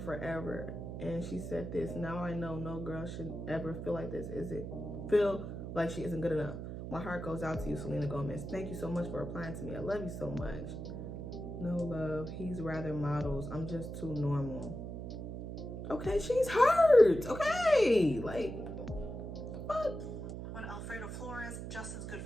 forever. And she said this, now I know no girl should ever feel like this. Feel like she isn't good enough. My heart goes out to you, Selena Gomez. Thank you so much for replying to me. I love you so much. No love. He's rather models. I'm just too normal. Okay, she's hurt. Okay, like, what? When Alfredo Flores, Justin's good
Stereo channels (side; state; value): right; noise; hum, 7 dB below the sound